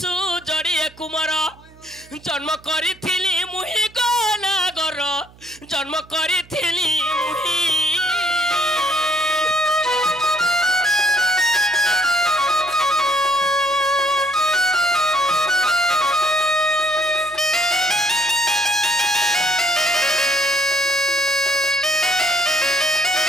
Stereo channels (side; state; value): right; noise; hum, 25 dB below the sound